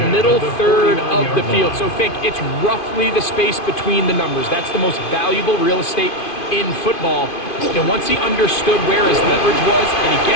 middle third of the field. So think it's roughly the space between the numbers. That's the most valuable real estate in football. And once he understood where his leverage was and he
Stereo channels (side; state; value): right; late; 2.5 ms